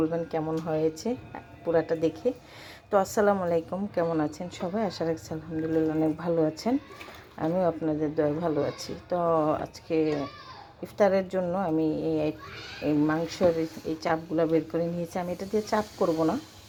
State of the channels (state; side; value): identical; both; correlation 1.00